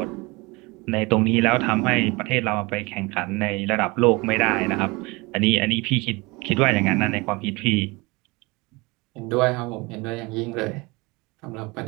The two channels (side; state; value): left; quieter; 24.9 dB